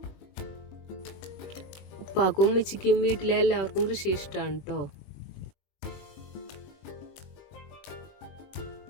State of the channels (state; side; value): late; right; 21 ms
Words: ഉപ്പാക്കും ഉമ്മച്ചിക്കും വീട്ടിലെ എല്ലാവർക്കും കൃഷി ഇഷ്ടമാണ് കേട്ടോ.